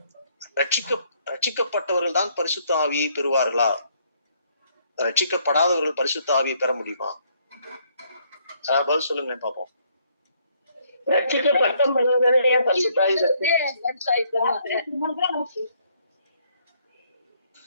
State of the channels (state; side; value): inverted; both; correlation -0.68